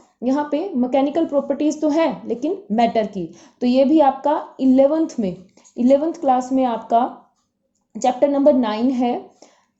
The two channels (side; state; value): both; identical; correlation 1.00